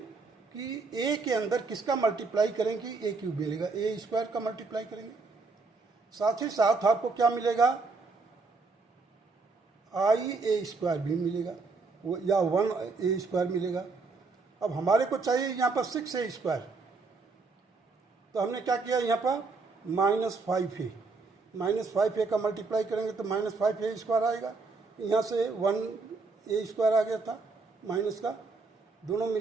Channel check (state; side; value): quieter; left; 4.1 dB